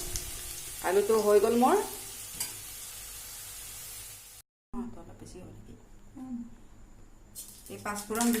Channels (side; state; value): both; identical; correlation 1.00